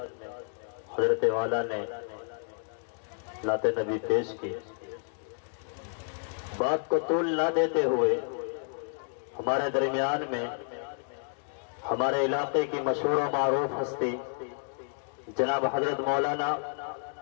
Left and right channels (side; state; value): right; silent; 58 dB below the other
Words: حضرت والا نے نعت نبی پیش کی۔ بات کو طول نہ دیتے ہوئے ہمارے درمیان میں ہمارے علاقے کی مشہور و معروف ہستی جناب حضرت مولانا